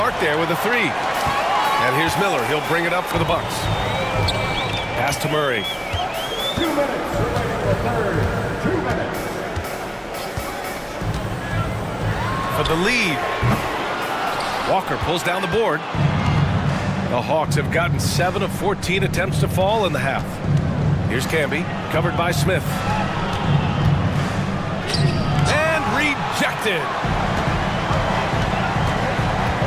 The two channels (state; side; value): identical; both; correlation 1.00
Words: there with a 3. And here's Miller. He'll bring it up for the Bucks. Pass to Murray. 2 minutes remaining in the third. 2 minutes. For the lead. Walker pulls down the board. The Hawks have gotten 7 of 14 attempts to fall in the half. Here's Camby, covered by Smith. And rejected.